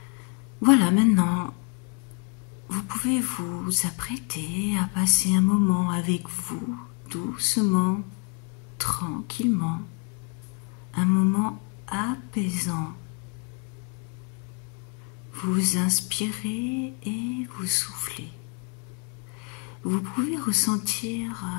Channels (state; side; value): quieter; right; 35.4 dB